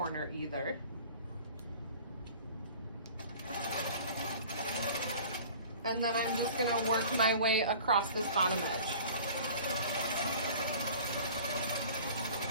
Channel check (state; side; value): inverted; both; correlation -0.44